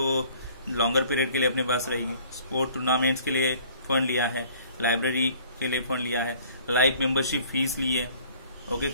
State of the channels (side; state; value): both; inverted; correlation -0.54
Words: लॉन्गर पीरियड के लिए अपने पास रहेगी। स्पोर्ट टूर्नामेंट्स के लिए फंड लिया है, लाइब्रेरी के लिए फंड लिया है, लाइफ मेंबरशिप फीस ली है, ओके,